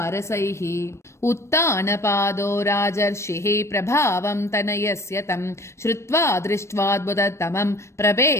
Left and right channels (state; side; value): late; right; 0.13 ms